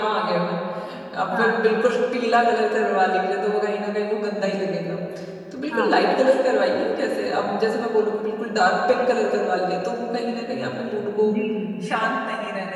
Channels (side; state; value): both; identical; correlation 1.00